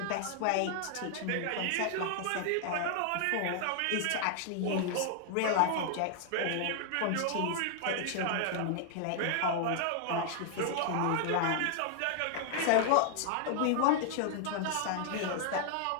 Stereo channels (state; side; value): different; both; correlation 0.00